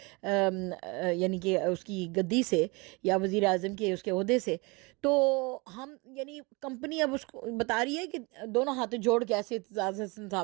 یعنی کہ اس کی گدی سے یا وزیر اعظم کے اس کے عہدے سے، تو ہم یعنی کمپنی اب اس کو بتا رہی ہے کہ دونوں ہاتھ جوڑ کے ایسے اعتزاز احسن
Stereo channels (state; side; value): quieter; left; 27.4 dB